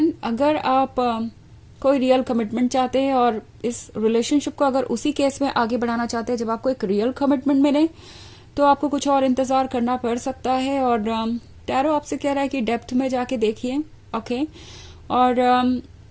अगर आप कोई रियल कमिटमेंट चाहते हैं और इस रिलेशनशिप को अगर उसी केस में आगे बढ़ाना चाहते हैं जब आपको एक रियल कमिटमेंट मिले, तो आपको कुछ और इंतजार करना पड़ सकता है। और टैरो आपसे कह रहा है कि डेप्थ में जाके देखिए, ओके। और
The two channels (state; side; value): identical; both; correlation 1.00